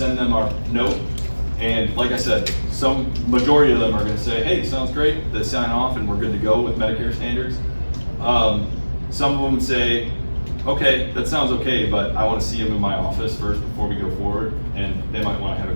them our note. And like I said, some majority of them are going to say, "Hey, sounds great." They sign off, and we're good to go with Medicare standards. Some of them say, "Okay, that sounds okay, but I want to see him in my office first before we go forward," and they might want to have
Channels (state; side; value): inverted; both; correlation -1.00